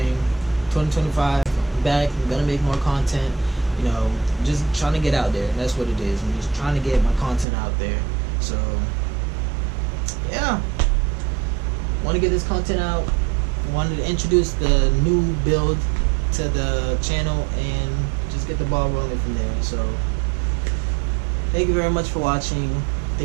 2025, I'm back. I'm gonna make more content. You know, just trying to get out there. That's what it is. I'm just trying to get my content out there. So yeah, want to get this content out. Wanted to introduce the new build to the channel and just get the ball rolling from there. So thank you very much for watching.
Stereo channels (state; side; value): drops out; left; at 7.5 s